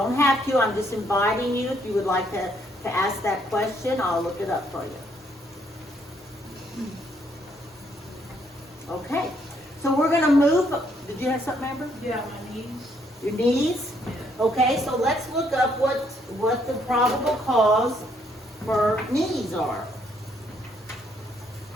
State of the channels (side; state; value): both; normal; correlation 0.70